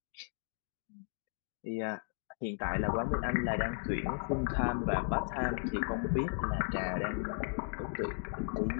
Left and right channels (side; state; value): right; silent; 54 dB below the other